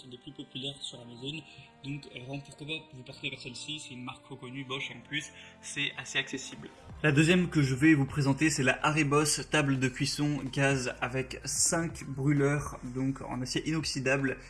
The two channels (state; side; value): identical; both; correlation 1.00